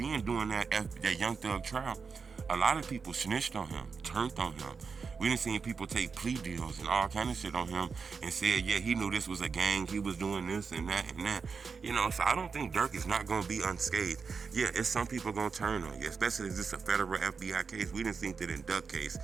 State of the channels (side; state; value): left; quieter; 5.3 dB